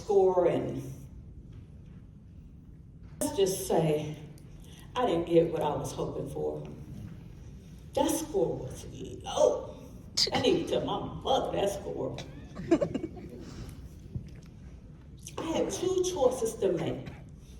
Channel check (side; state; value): both; identical; correlation 1.00